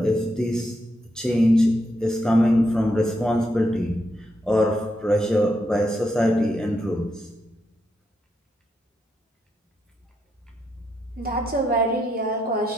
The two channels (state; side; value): normal; both; correlation 0.81